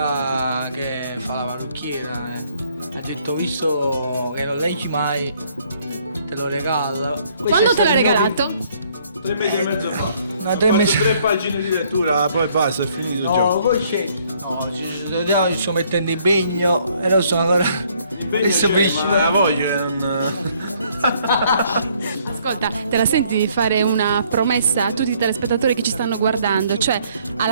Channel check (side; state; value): both; inverted; correlation -0.64